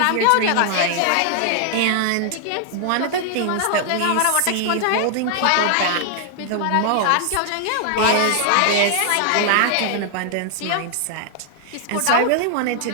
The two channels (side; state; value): both; different; correlation 0.00